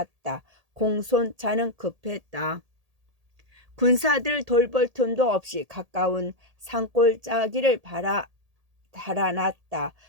공소찬은 급했다. 군사들 돌볼 틈도 없이 가까운 산골짜기를 달아났다.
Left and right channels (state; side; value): late; left; 1.8 ms